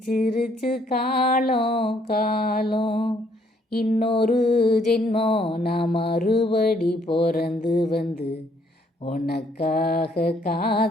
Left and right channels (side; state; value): both; normal; correlation 0.67